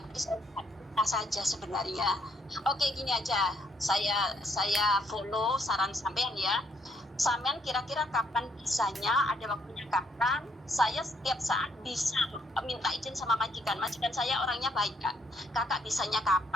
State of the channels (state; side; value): normal; both; correlation 0.72